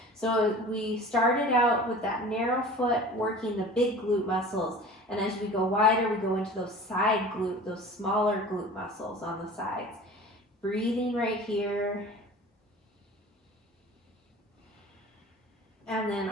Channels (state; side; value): normal; both; correlation 0.40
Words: So we started out with that narrow foot, working the big glute muscles. And as we go wider, we go into those side glute, those smaller glute muscles on the sides. Breathing right here. And then